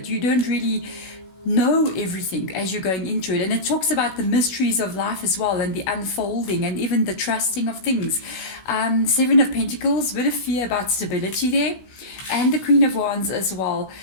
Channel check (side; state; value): right; late; 16 ms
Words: you don't really know everything as you're going into it. And it talks about the mysteries of life as well, and the unfolding, and even the trusting of things. 7 of Pentacles, a bit of fear about stability there, and the Queen of Wands as well.